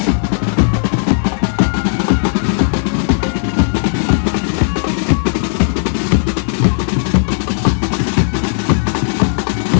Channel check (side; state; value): right; silent; digital silence